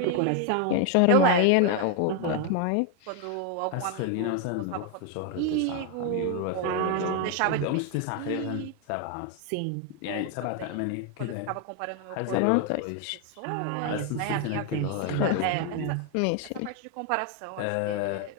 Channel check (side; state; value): both; different; correlation 0.01